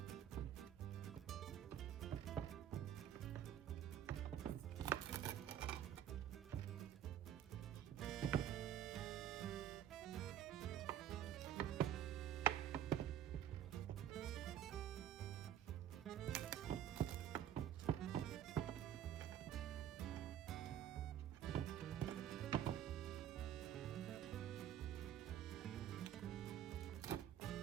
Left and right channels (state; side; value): quieter; left; 10.7 dB